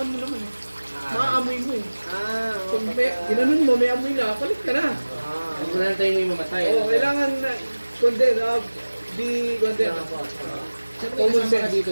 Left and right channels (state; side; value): inverted; both; correlation -1.00